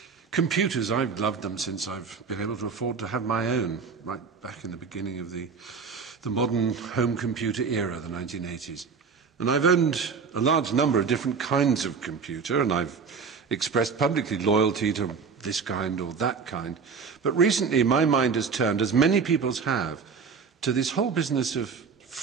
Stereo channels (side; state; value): left; quieter; 5.4 dB